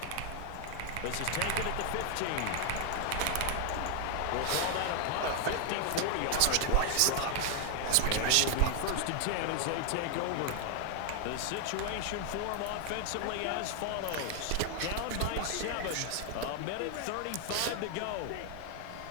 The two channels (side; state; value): both; different; correlation 0.00